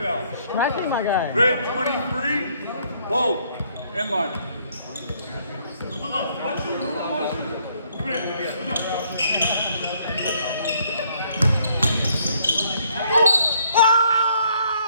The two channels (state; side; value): inverted; both; correlation -0.67